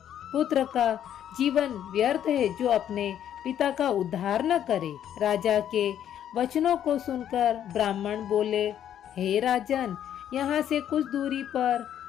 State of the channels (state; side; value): quieter; right; 10.2 dB